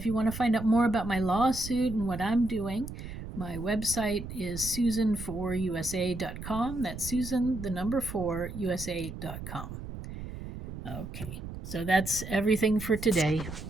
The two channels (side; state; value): right; noise; rumble, 9 dB below the sound